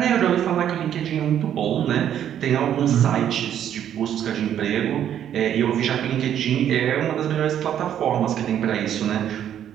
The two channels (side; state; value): left; quieter; 10.1 dB